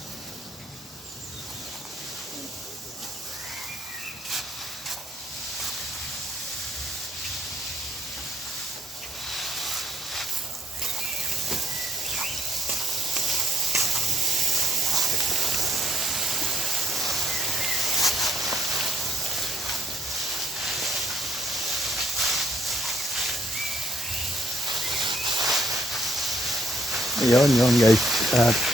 Yun guys. At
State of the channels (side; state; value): both; normal; correlation 0.71